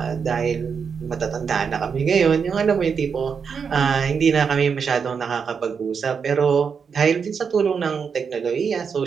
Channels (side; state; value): left; quieter; 6.2 dB